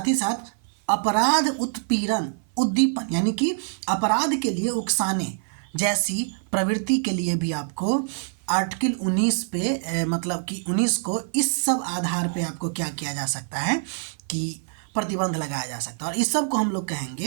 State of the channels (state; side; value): silent; left; 57 dB below the other